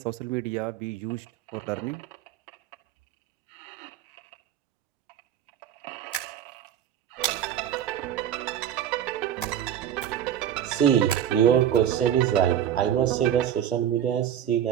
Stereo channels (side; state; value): left; quieter; 10.1 dB